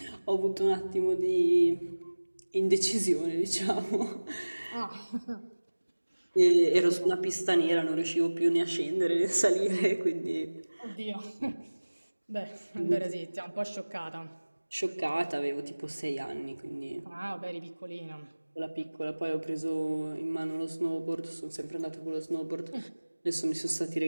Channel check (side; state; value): both; inverted; correlation -1.00